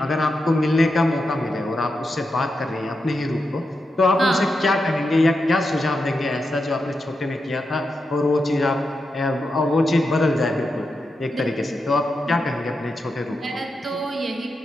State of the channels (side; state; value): both; normal; correlation 0.87